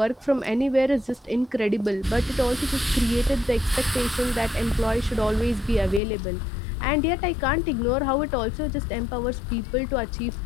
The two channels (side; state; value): right; drops out; at 6.0 s